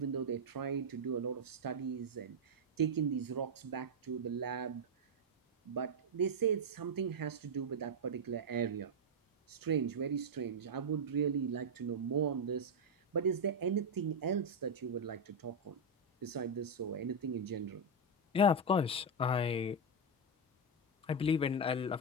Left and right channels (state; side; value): normal; both; correlation 0.02